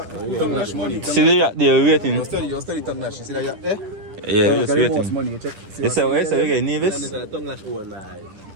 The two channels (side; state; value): left; late; 10 ms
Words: lash money. See the yacht there waiting. You study tongue lash. You see that? Yeah? Yeah, we just Got the most waiting. money. You check. You say what? You get nervous? tongue lash own,